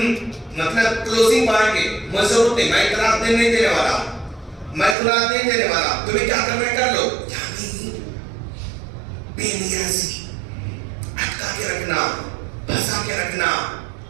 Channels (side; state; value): left; drops out; at 5.0 s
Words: مطلب کلوزنگ پائیں گے. مجھے ضرورت نہیں، میں طلاق نہیں دینے والا، میں طلاق نہیں دینے والا، تمہیں کیا کرنا ہے کر لو. یعنی بے نیازی، اٹکا کے رکھنا، پھنسا کے رکھنا،